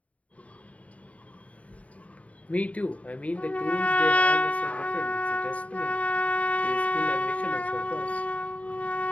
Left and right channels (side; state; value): right; late; 0.067 ms